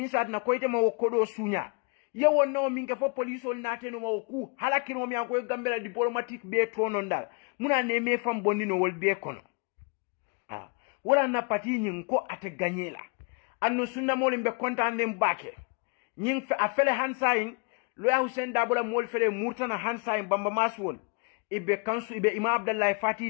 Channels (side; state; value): right; quieter; 35.2 dB